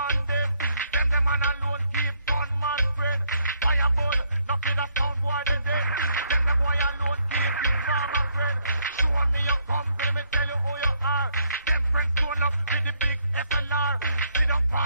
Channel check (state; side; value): inverted; both; correlation -0.72